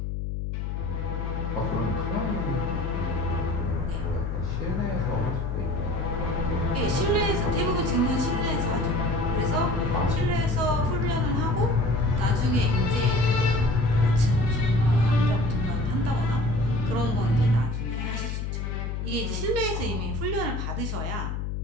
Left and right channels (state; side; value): noise; left; hum, 3 dB below the sound